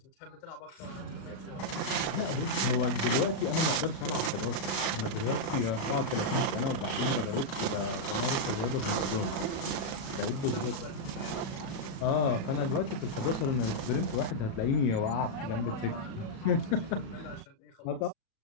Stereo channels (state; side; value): late; right; 37 ms